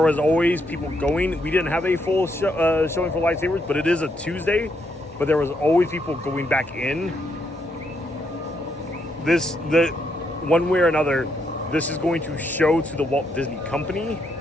was always people going. We didn't have a full showing for lightsabers, but it is a Tuesday. But there was always people going back in. One way or another, this is going to show to the Walt Disney Company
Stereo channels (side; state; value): both; normal; correlation 0.76